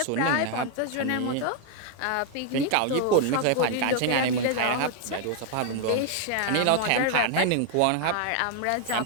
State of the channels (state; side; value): different; both; correlation 0.00